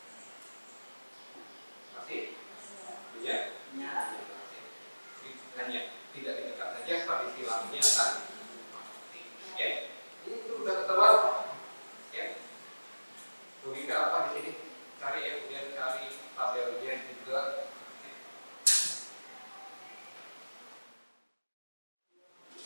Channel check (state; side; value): inverted; both; correlation -1.00